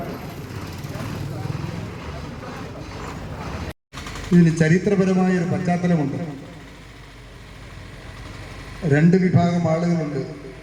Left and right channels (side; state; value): both; identical; correlation 1.00